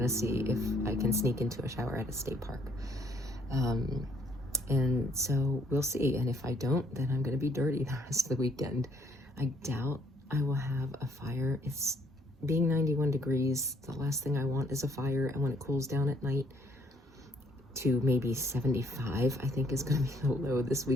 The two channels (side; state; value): both; normal; correlation 0.66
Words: to see if I can sneak into a shower at a state park. And so we'll see. And if I don't, then I'm going to be dirty the rest of the weekend. I doubt I will have a fire. It's being 91 degrees. The last thing I want is a fire. And when it cools down at night to maybe 75, I think is going to be the low this